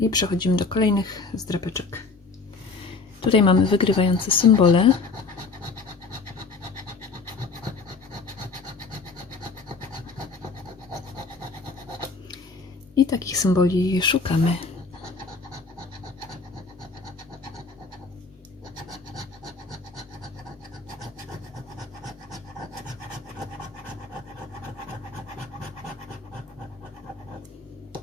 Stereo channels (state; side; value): quieter; right; 4.3 dB